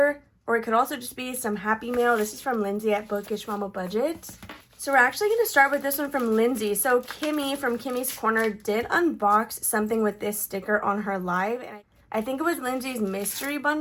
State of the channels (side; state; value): both; identical; correlation 1.00